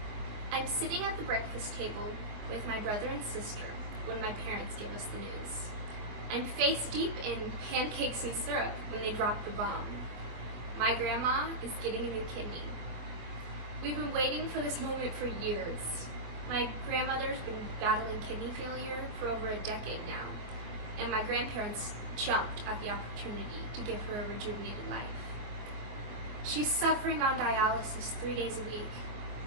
I'm sitting at the breakfast table with my brother and sister when my parents give us the news. I'm face deep in pancakes and syrup when they drop the bomb. My grandma is getting a new kidney. We've been waiting for this moment for years. My grandmother's been battling kidney failure for over a decade now, and my grandparents jumped at the opportunity to give her a rejuvenated life. She's suffering on dialysis 3 days a week.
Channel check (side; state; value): left; late; 24 ms